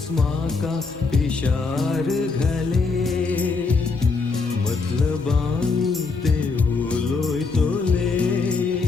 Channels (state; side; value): quieter; right; 4.2 dB